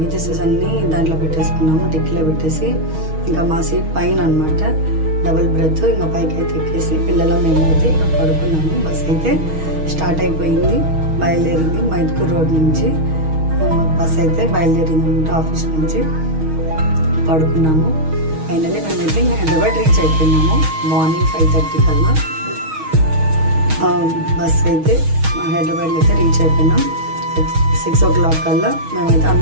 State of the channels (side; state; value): left; late; 6.4 ms